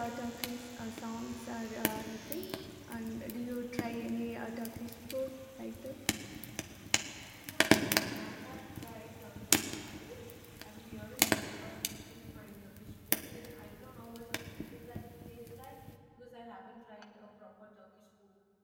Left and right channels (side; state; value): both; identical; correlation 1.00